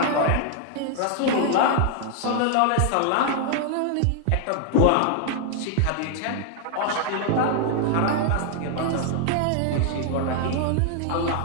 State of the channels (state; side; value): different; both; correlation 0.00